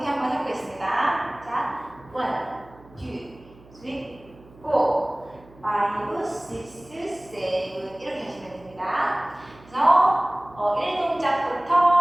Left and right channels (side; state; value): right; noise; hum, 24 dB below the sound